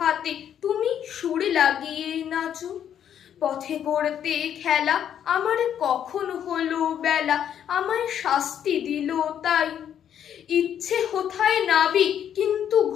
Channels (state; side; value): quieter; right; 9.5 dB